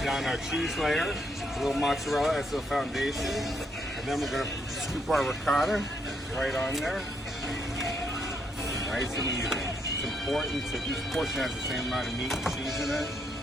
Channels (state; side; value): normal; both; correlation 0.75